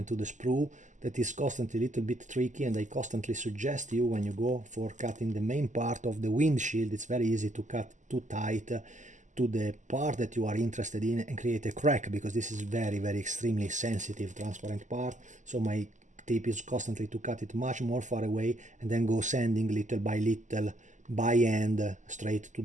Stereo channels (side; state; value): left; late; 0.36 ms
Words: to the sprue that is constantly a little bit tricky, and I constantly suggest you, when you go for cutting the main part of the windshield, it's very easy to cut too tight to the part that you are interested in and create a crack, because this is very extremely sensitive transparent part. So my tip is constantly to cut it much more far away, and then go sanding little by little by hand straight to